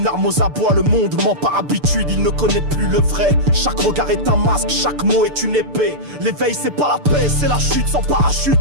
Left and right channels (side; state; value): left; late; 6.8 ms